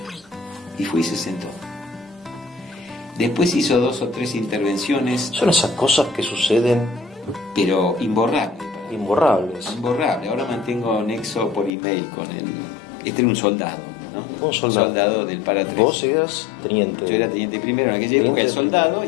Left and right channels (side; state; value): right; drops out; at 11.7 s